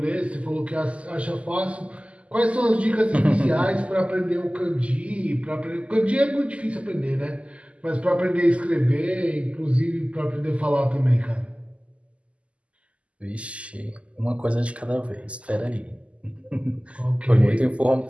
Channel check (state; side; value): late; left; 0.060 ms